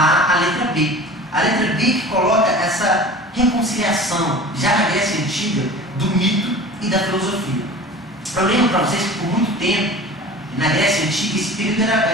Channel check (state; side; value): normal; both; correlation 0.39